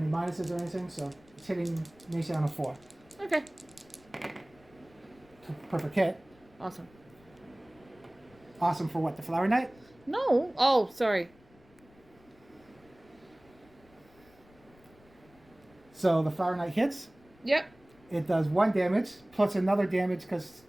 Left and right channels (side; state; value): left; noise; rumble, 28 dB below the sound